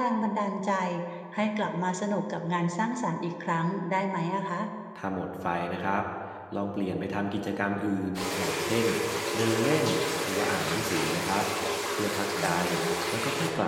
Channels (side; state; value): both; identical; correlation 1.00